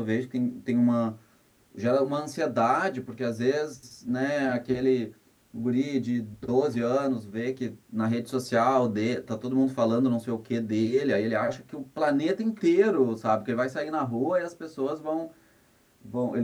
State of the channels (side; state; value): both; identical; correlation 1.00